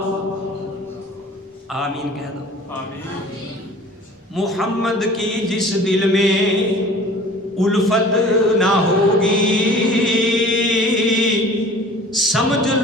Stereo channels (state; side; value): normal; both; correlation 0.46